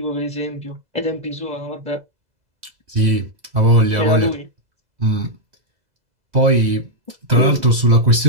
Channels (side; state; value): left; late; 2.0 ms